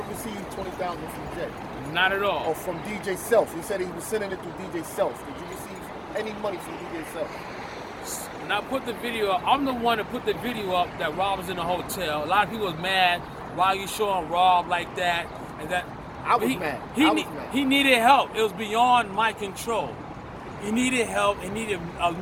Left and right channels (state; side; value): identical; both; correlation 1.00